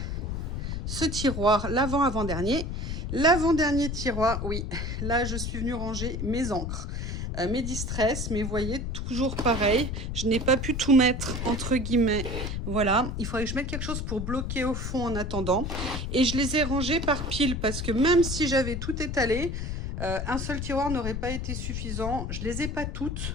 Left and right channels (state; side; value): noise; left; rumble, 3 dB below the sound